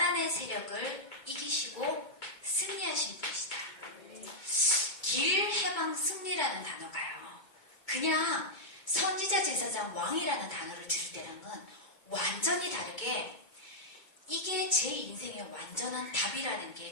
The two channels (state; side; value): late; right; 2.2 ms